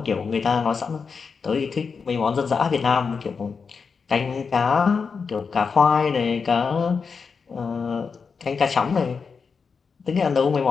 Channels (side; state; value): right; quieter; 5.4 dB